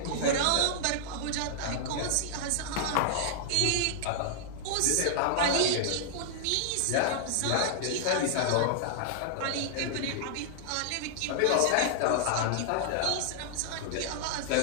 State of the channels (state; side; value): different; both; correlation -0.01